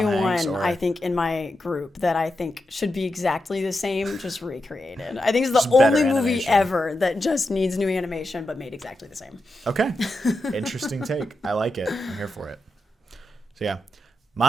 one I think in my group that I think should be exactly the same, just recreated. I think it's the only movie ever that just needs new animation but made exactly the same. Okay. Interesting take. I like it. I'm here for it. So yeah.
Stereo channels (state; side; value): normal; both; correlation 0.88